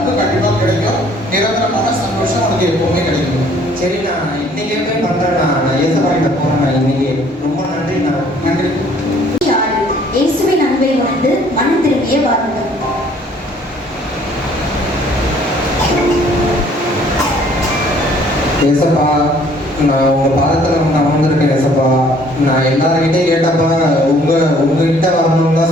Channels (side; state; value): both; normal; correlation 0.59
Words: கண்டிப்பாக கிடைக்கும். நிரந்தரமான சந்தோஷம் உனக்கு எப்பவுமே கிடைக்கும். சரி, நான் இன்னைக்கே போய் பண்றேன். நான் ஏசப்பா கிட்ட போறேன் இன்னைக்கு. ரொம்ப நன்றிண்ணா. நன்றி. இயேசுவின் அன்பை உணர்ந்து மனம் திரும்பிய வாருங்கள். ஏசப்பா, நான் உங்க பாதத்துல நான் வந்திருக்கேன் ஏசப்பா. நான் எல்லாருக்கிட்டையும் கேட்டப்ப உங்ககிட்ட வரணும்னு தான்